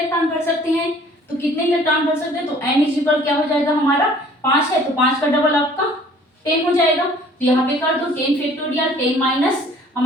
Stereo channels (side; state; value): both; normal; correlation 0.53